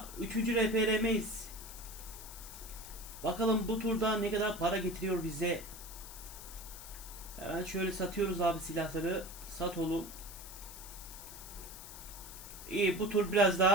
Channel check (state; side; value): noise; left; hiss, 13 dB below the sound